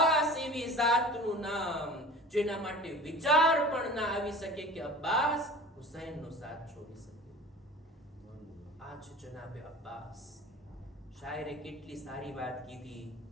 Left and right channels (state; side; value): normal; both; correlation 0.39